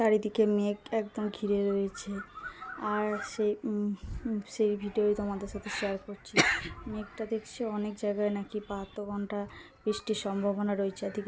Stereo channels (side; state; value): both; identical; correlation 1.00